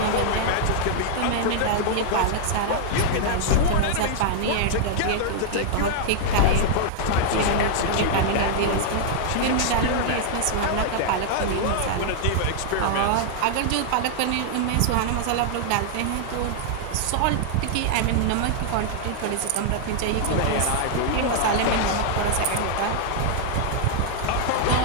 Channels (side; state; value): both; different; correlation -0.01